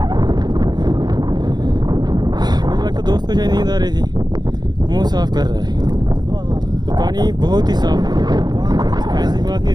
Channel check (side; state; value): left; late; 0.20 ms